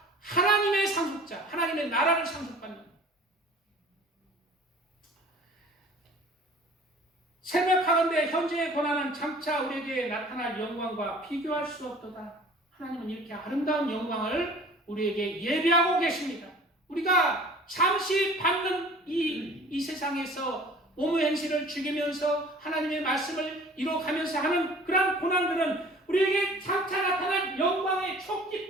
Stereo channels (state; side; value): normal; both; correlation 0.47